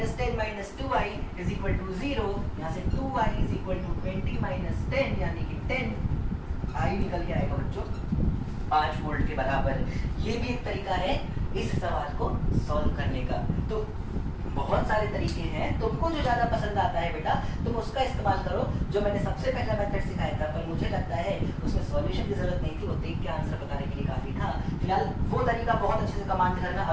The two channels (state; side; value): identical; both; correlation 1.00